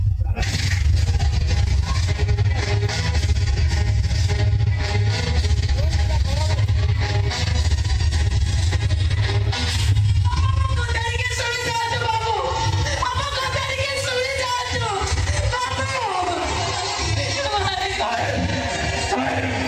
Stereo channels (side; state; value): both; identical; correlation 1.00